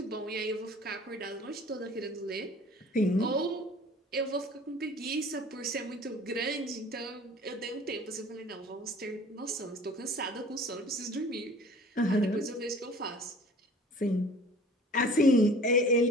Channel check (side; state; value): both; normal; correlation 0.47